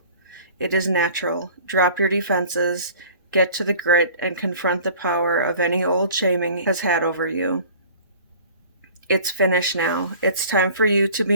It is natural. Drop your defenses, get to the grit, and confront the power of any old shaming has had over you. It's finished now. It's time for you to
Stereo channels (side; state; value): both; inverted; correlation -0.47